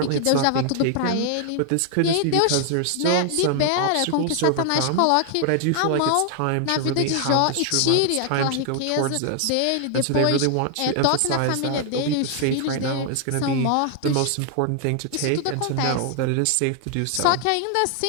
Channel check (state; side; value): different; both; correlation 0.00